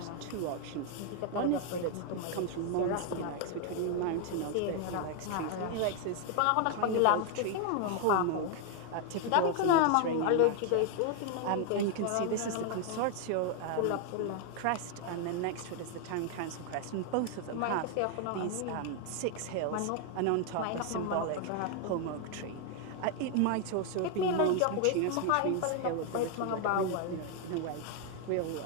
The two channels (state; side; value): different; both; correlation 0.00